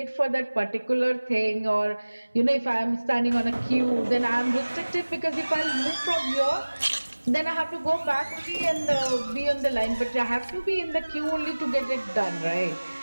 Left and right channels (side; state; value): both; inverted; correlation -1.00